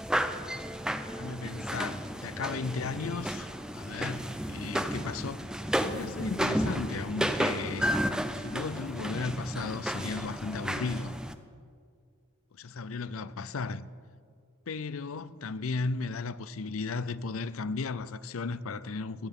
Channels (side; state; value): both; normal; correlation 0.68